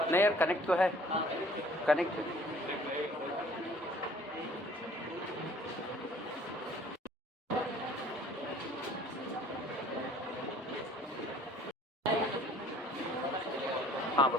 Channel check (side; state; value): both; normal; correlation 0.54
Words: नहीं यार, कनेक्ट तो है, कनेक्ट है। हाँ